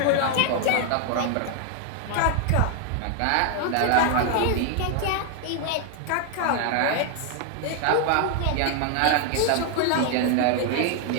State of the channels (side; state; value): both; different; correlation 0.00